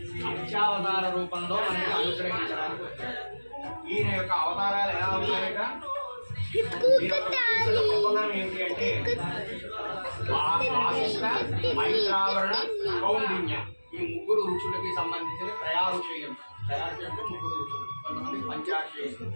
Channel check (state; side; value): inverted; both; correlation -1.00